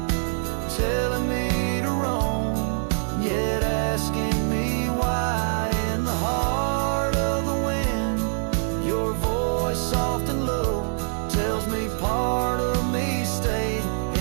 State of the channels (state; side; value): silent; left; 62 dB below the other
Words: telling me to roam, yet asking me why. In the heart of the wind, your voice soft and low tells me part of me stayed